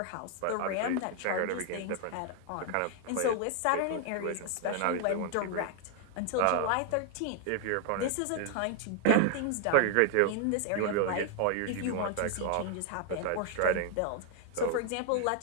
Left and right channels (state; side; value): different; both; correlation 0.00